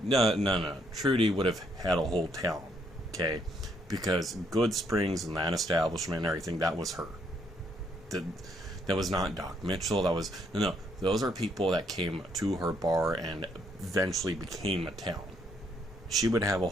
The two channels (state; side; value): normal; both; correlation 0.71